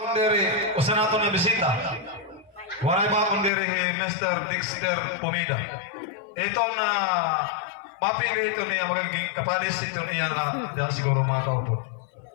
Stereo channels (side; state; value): right; drops out; at 3.5 s